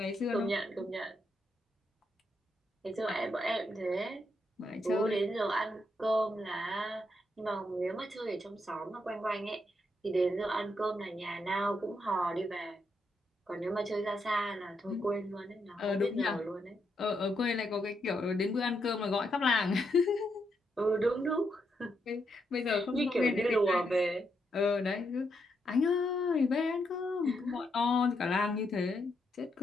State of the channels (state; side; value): normal; both; correlation 0.80